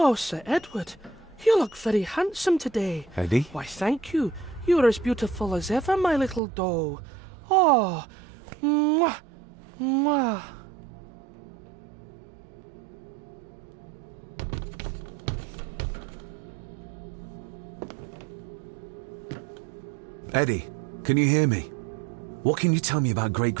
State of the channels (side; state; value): left; drops out; at 6.4 s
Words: Sir Edward, you look very handsome today. Eddie? Why, thank you. You are as beautiful as ever, my little doll. Oh, mwah, mwah. Eddie, can you hear me? What can you tell me about